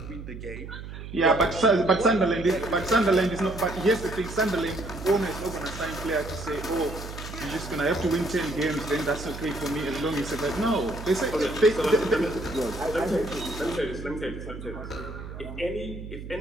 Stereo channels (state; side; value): noise; right; hum, 11 dB below the sound